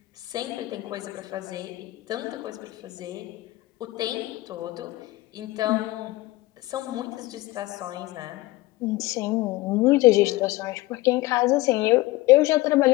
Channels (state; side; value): quieter; right; 19.3 dB